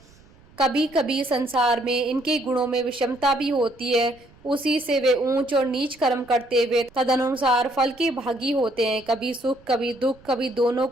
कभी कभी संसार में इनके गुणों में विषमता भी होती है। उसी से वे ऊंच और नीच कर्म करते हुए तदनुसार फल के भागी होते हैं। कभी सुख, कभी दुख, कभी दोनों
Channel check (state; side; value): noise; right; rumble, 27 dB below the sound